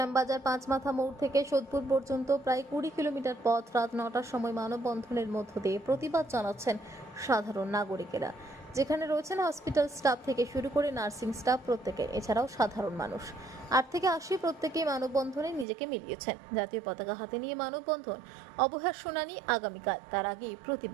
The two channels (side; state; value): left; drops out; at 15.7 s